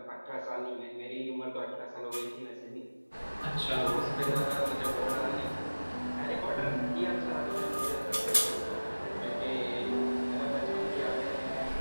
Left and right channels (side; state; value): both; inverted; correlation -1.00